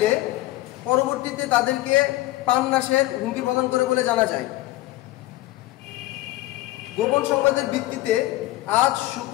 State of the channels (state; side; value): quieter; right; 17.4 dB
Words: পরবর্তীতে তাদেরকে প্রাণনাশের হুমকি প্রদান করে বলে জানা যায়। গোপন সংবাদের ভিত্তিতে আজ